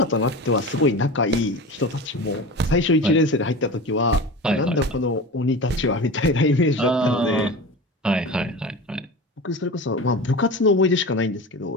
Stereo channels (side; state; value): both; normal; correlation 0.30